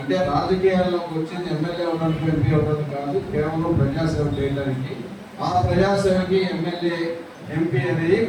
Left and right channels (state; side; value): identical; both; correlation 1.00